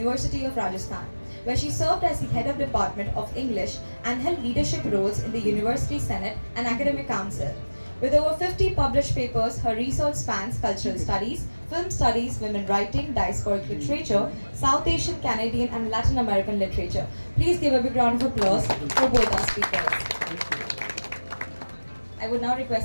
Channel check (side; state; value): both; inverted; correlation -1.00